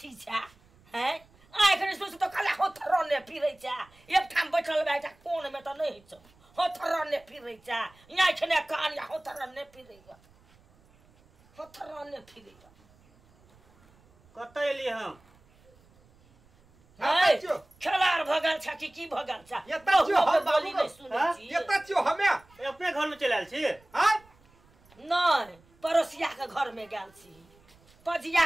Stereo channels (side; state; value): right; noise; rumble, 30 dB below the sound